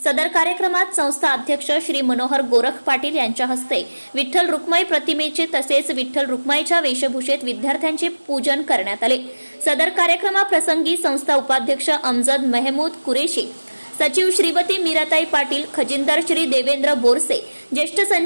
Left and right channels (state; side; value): inverted; both; correlation -1.00